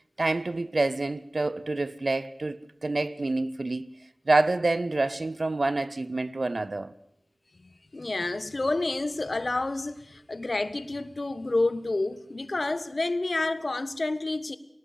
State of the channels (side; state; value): both; normal; correlation 0.96